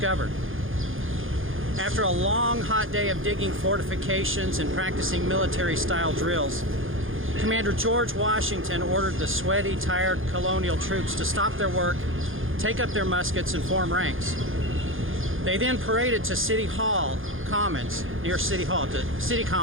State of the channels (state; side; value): late; left; 0.59 ms